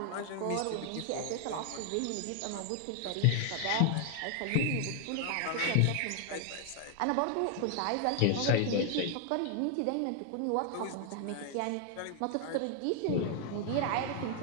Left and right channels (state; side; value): different; both; correlation 0.00